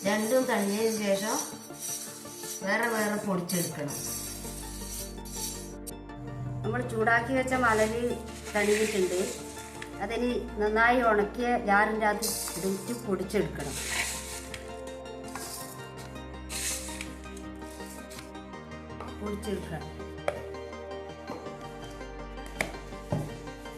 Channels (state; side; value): identical; both; correlation 1.00